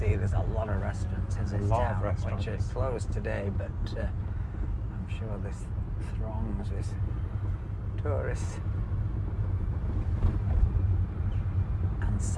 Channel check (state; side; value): identical; both; correlation 1.00